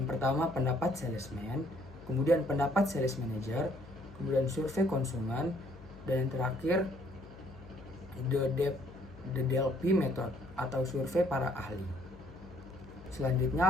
pertama pendapat salesman, kemudian pendapat sales manager, kemudian survei konsumen, dan yang terakhir the DLP method atau survei para ahli.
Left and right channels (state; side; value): noise; left; hum, 19 dB below the sound